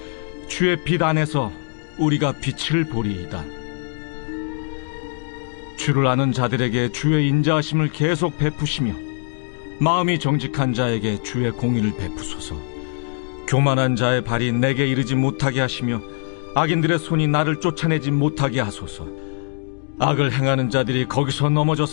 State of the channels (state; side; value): silent; right; digital silence